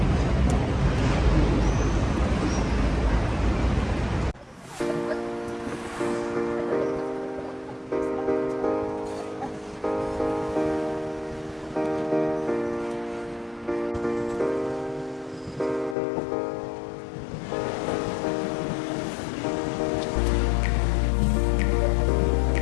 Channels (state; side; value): drops out; right; at 16.0 s